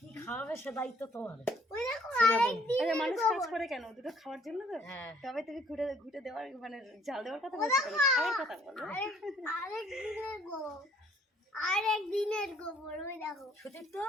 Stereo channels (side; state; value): both; normal; correlation 0.61